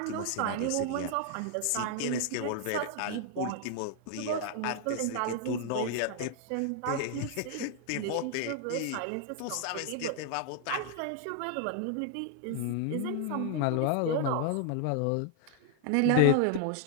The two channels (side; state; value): both; different; correlation 0.00